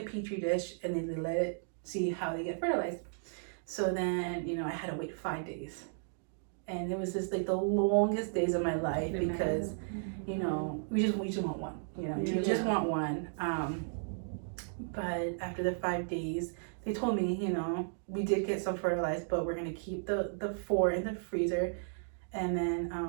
dish and then they let it see how they get fertilized. So then, you know, I had to wait 5 days. And it was just like the longest days of my life because, you know, we just want one, you know, you just want one. But after the 5 days, they told me, you know, we did get some fertilized, but we're going to keep the 4 in the freezer. And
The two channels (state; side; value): silent; left; digital silence